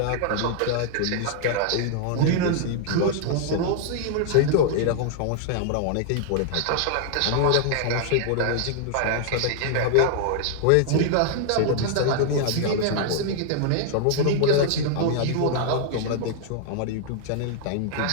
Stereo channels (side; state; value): both; different; correlation 0.00